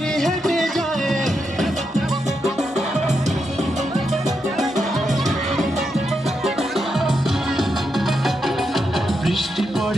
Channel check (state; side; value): normal; both; correlation 0.84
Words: হেঁটে যায়। বৃষ্টি